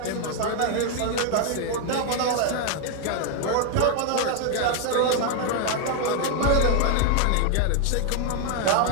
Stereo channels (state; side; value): different; both; correlation 0.00